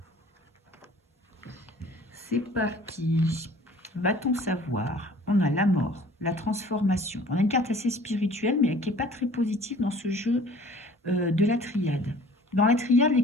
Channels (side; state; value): both; normal; correlation 0.50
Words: C'est parti. Va-t-on savoir? On a la mort, la transformation. On a une carte assez spirituelle, mais qui n'est pas très positive dans ce jeu de la triade. Dans la triade, les